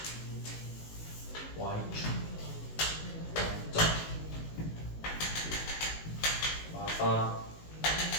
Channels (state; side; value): late; right; 19 ms